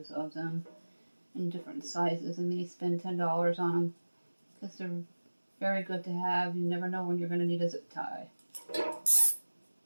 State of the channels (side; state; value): both; inverted; correlation -1.00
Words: of them in different sizes and maybe spend $10 on them because they're very good to have. You never know when you're going to need a zip tie.